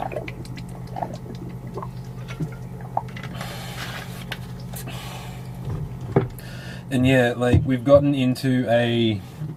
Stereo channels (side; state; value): both; identical; correlation 1.00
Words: And yeah, like, we've gotten into a